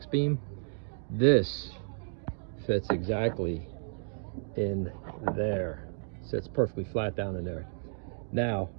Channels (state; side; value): silent; left; digital silence